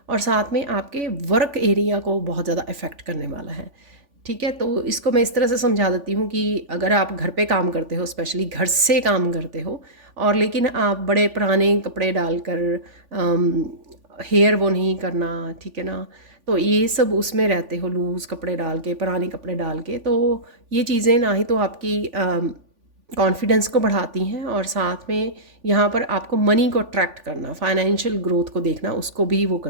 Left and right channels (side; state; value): left; late; 3.5 ms